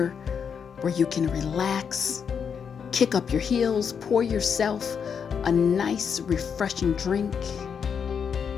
where you can relax, kick up your heels, pour yourself a nice, refreshing drink,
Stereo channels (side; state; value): right; quieter; 6.9 dB